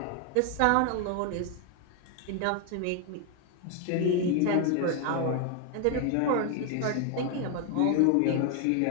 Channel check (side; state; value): both; different; correlation 0.00